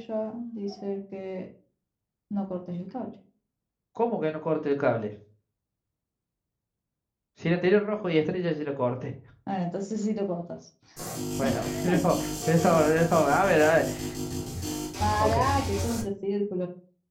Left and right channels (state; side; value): identical; both; correlation 1.00